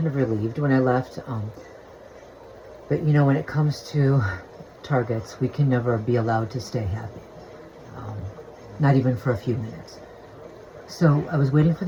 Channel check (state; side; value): identical; both; correlation 1.00